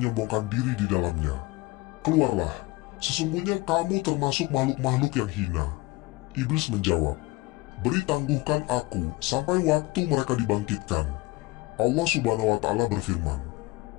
diri di dalamnya. Keluarlah, sesungguhnya kamu termasuk makhluk-makhluk yang hina. Iblis menjawab, beri tangguhkan aku sampai waktu mereka dibangkitkan. Allah Subhanahu wa Ta'ala berfirman,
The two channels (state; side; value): quieter; right; 21.7 dB